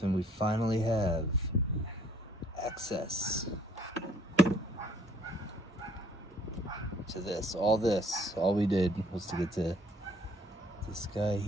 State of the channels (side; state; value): both; normal; correlation 0.61